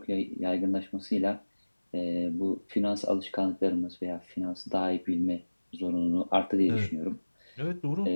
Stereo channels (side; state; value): both; inverted; correlation -1.00